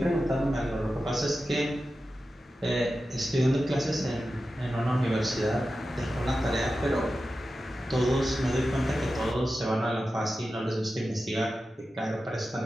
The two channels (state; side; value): normal; both; correlation 0.92